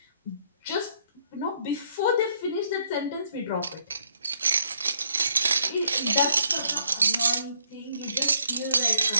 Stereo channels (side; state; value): both; inverted; correlation -0.69